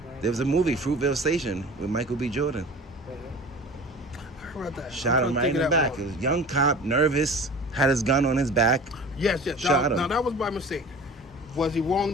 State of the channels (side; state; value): both; normal; correlation 0.40